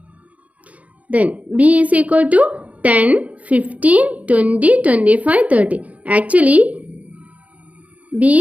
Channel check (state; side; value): late; left; 0.069 ms